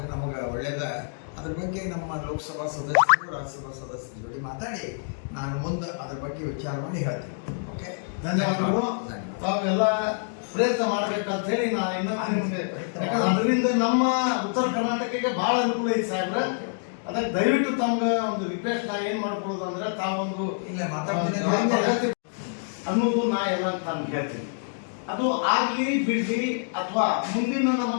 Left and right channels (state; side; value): silent; right; digital silence